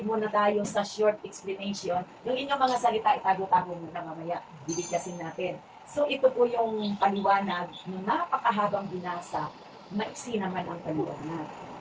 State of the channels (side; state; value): both; identical; correlation 1.00